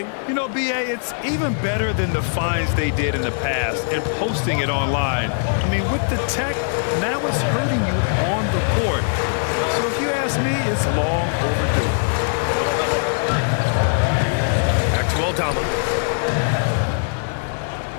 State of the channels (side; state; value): right; silent; 64 dB below the other